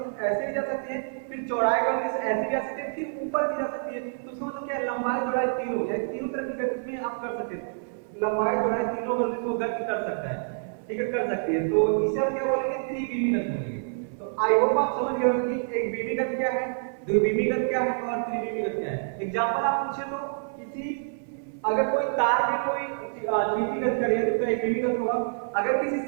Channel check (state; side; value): silent; left; 57 dB below the other